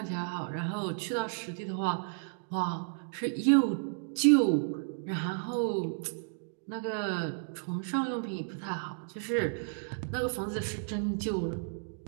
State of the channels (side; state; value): left; silent; digital silence